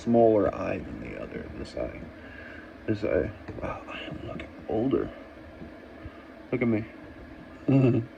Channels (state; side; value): identical; both; correlation 1.00